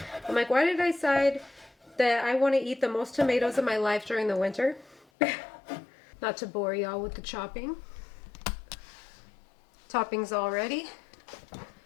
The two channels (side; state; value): right; drops out; at 5.1 s